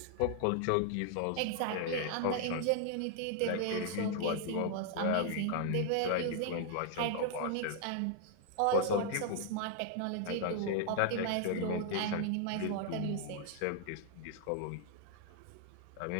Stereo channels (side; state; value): both; different; correlation 0.00